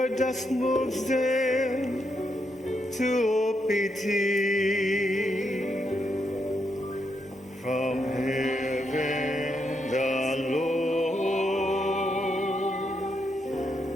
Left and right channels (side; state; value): both; normal; correlation 0.80